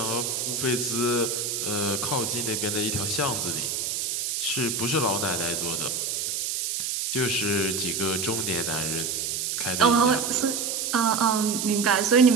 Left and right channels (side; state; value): right; noise; hiss, 1 dB below the sound